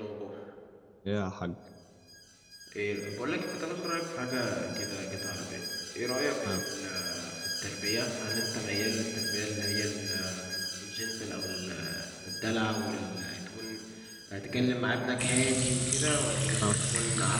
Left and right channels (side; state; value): both; identical; correlation 1.00